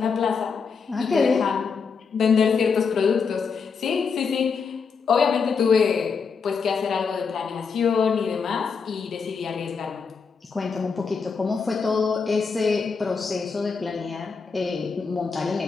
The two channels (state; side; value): quieter; right; 5.5 dB